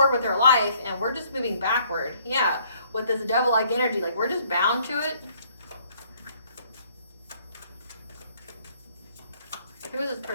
with their life, and we're just moving backward. Yeah, with this devil-like energy, like we're just bound to it. Who is this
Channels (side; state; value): both; inverted; correlation -0.63